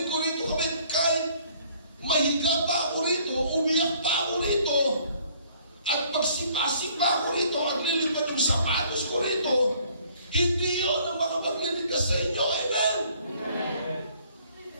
ko rito, kapatid, kahit mahiga pa ako rito, umiyak pa ako rito, at pagsipasip pa ako rito, at lilipad yung sapatos ko rito, hindi yun ang makapagliligtas sa inyo. Amen? Amen.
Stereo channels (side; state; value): both; inverted; correlation -0.60